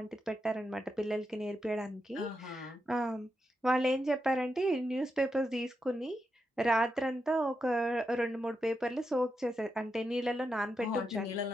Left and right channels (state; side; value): normal; both; correlation 0.86